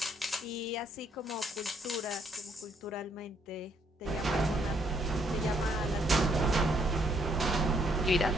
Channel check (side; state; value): both; normal; correlation 0.70